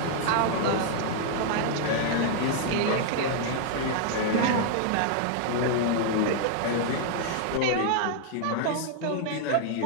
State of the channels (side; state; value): both; different; correlation 0.00